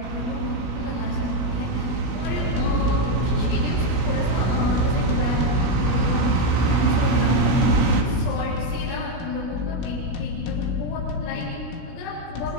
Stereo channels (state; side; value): late; right; 16 ms